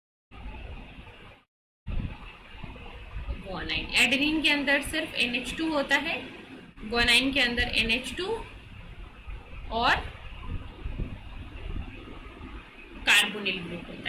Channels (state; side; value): identical; both; correlation 1.00